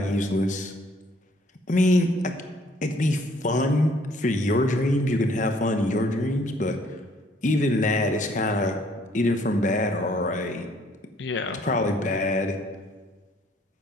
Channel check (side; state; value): both; normal; correlation 0.62